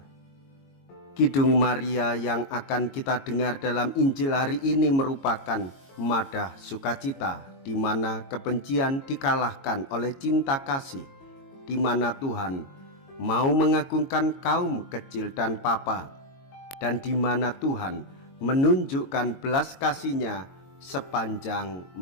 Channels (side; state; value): right; late; 22 ms